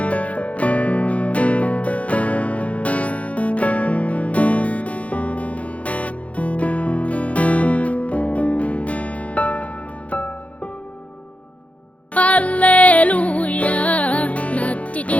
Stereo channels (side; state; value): right; late; 0.065 ms